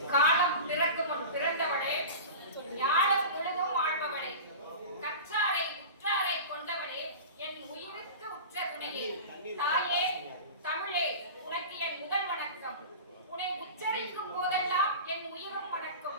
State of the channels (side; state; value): both; inverted; correlation -0.32